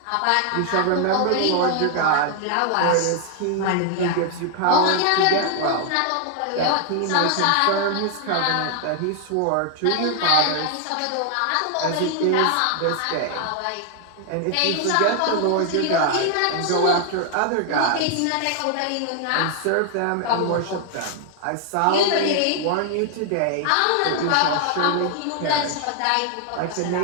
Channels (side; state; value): both; different; correlation 0.00